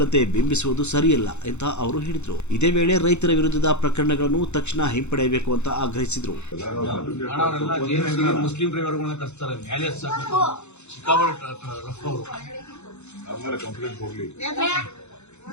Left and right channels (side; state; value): right; late; 0.82 ms